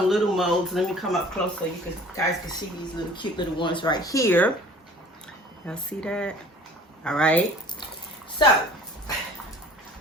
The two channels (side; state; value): both; normal; correlation 0.48